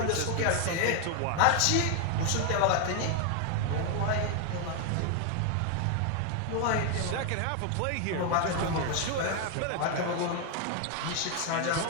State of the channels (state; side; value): different; both; correlation 0.01